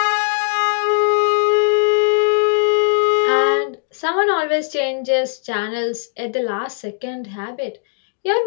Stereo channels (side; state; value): right; silent; 65 dB below the other